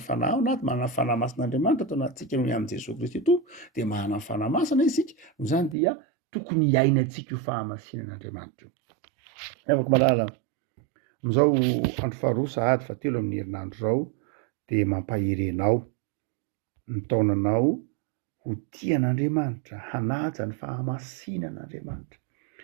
fanahy na manana ny fanahy masin'Andriamanitra atao anatintsika noho amin'ny Jesosy Kristy to de manana ny fanahy masina isika, no zany dia tokony hiainantsika io fahamasinan'Andriamanitra io. Afaka malala am'izao andro faharoa sahady fahatelo amin'ny herinandro zao de mampahirenao ny taonanao ho tian'Andriamanitra, hanaja ny fahamasinan'Andriamanitra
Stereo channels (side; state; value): left; drops out; at 5.8 s